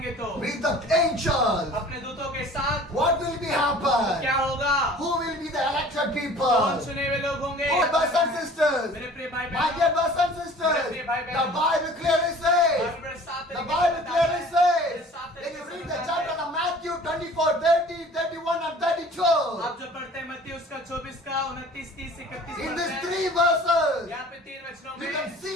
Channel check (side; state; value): both; normal; correlation 0.47